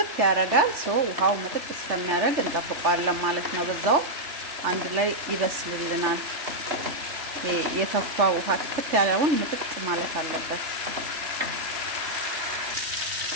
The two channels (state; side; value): late; left; 3.4 ms